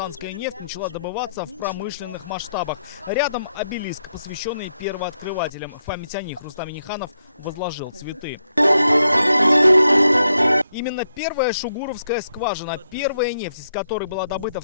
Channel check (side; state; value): both; inverted; correlation -0.81